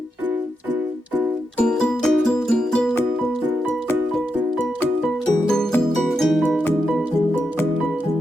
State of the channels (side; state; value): both; normal; correlation 0.85